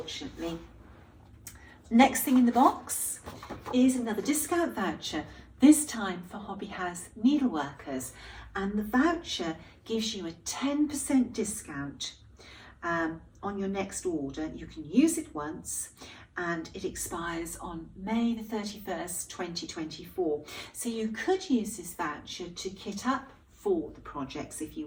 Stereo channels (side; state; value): both; identical; correlation 1.00